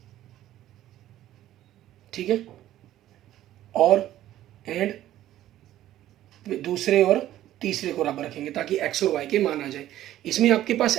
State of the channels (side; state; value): left; quieter; 13.3 dB